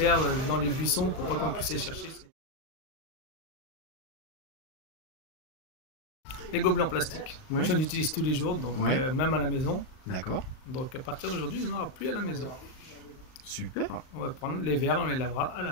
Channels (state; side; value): late; right; 38 ms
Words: dans les buissons, pour pas qu'on puisse les chercher. Les gobelets en plastique. Ouais. J'en utilise tous les jours, donc Ouais. même à la maison. D'accord. Donc à partir d'aujourd'hui, il n'y en aura plus à la maison. Super. On va prendre les verres, on les lavera à